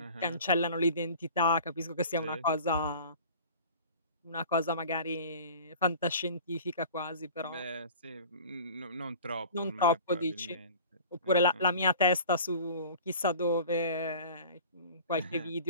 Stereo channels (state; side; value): inverted; both; correlation -0.42